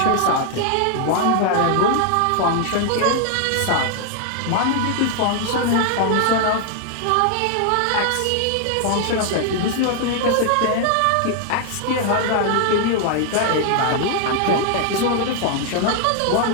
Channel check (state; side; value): different; both; correlation 0.00